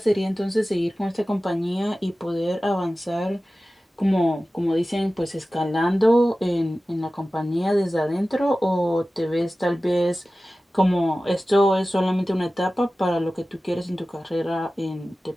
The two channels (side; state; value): both; normal; correlation 0.96